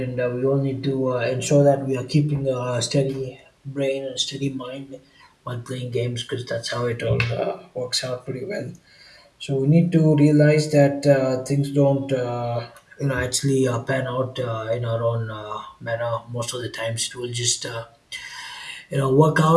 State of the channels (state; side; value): identical; both; correlation 1.00